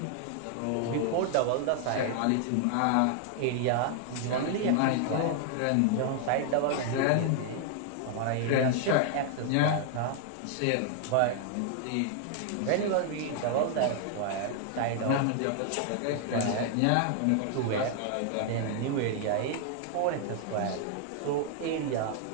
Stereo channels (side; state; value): both; different; correlation 0.00